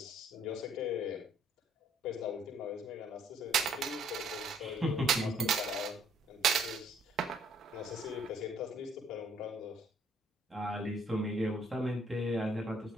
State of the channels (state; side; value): normal; both; correlation 0.64